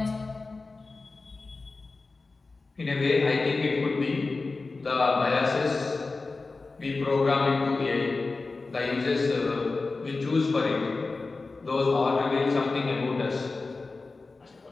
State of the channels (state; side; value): quieter; right; 3.8 dB